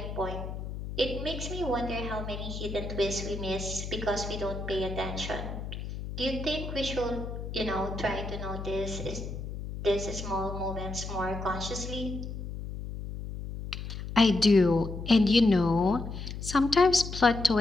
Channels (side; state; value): left; noise; hum, 7 dB below the sound